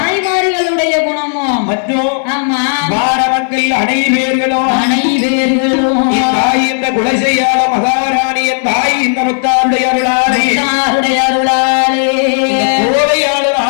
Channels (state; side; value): silent; right; 68 dB below the other